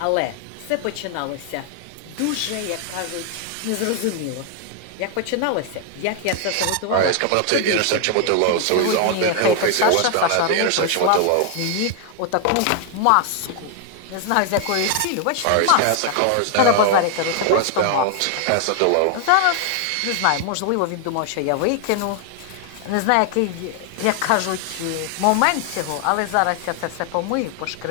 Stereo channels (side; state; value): both; different; correlation 0.00